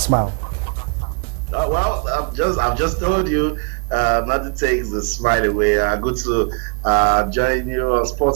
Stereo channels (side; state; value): left; quieter; 35.0 dB